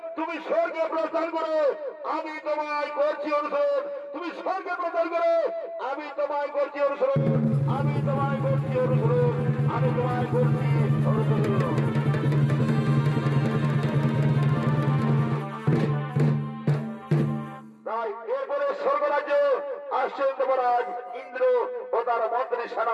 তুমি স্বর্গে প্রস্থান করো আমি তোমায় করছি অনুসরণ তুমি স্বর্গে প্রস্থান করো আমি তোমায় করছি অনুসরণ আমি তোমায় করছি অনুসরণ আমি তোমায় করছি অনুসরণ এরপরে স্বর্গরাজ্য আসছেন দেবরাজ ইন্দ্র ও তার মন্ত্রী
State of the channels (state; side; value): identical; both; correlation 1.00